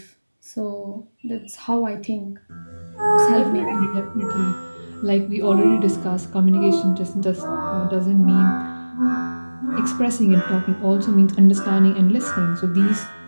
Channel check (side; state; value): both; inverted; correlation -1.00